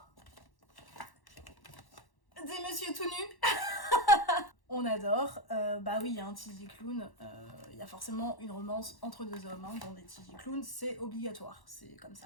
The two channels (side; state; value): right; late; 1.1 ms